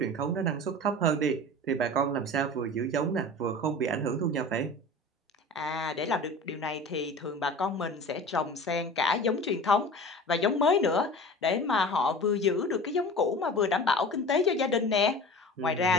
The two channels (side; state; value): both; normal; correlation 0.37